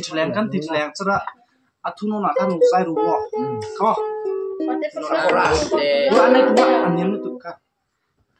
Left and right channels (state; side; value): identical; both; correlation 1.00